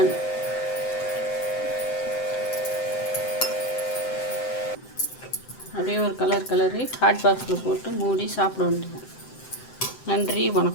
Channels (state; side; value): late; right; 7.8 ms